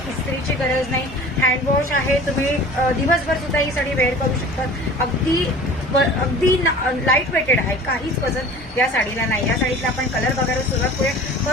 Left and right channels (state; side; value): normal; both; correlation 0.42